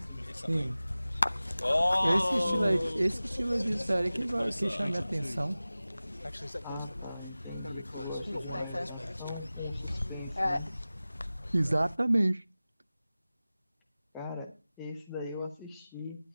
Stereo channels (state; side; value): inverted; both; correlation -0.97